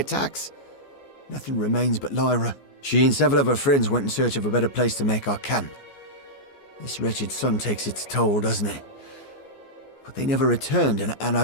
Nothing remains but Lyra. She and several of her friends went in search of a better place to make our camp. This wretched sun takes its toll, doesn't it? But they never returned, and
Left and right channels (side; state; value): right; late; 14 ms